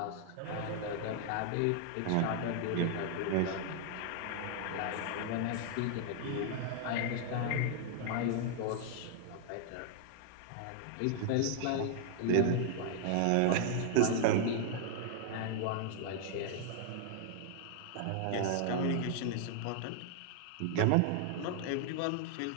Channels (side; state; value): both; different; correlation 0.00